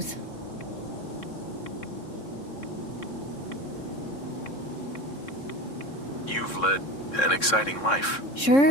You've led an exciting life.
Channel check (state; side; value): late; right; 3.6 ms